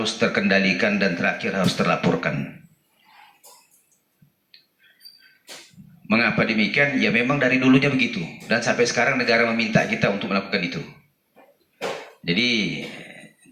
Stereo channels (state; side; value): identical; both; correlation 1.00